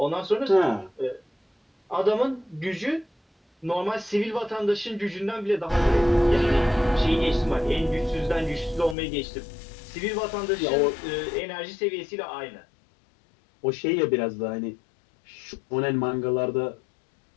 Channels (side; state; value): right; drops out; at 9.0 s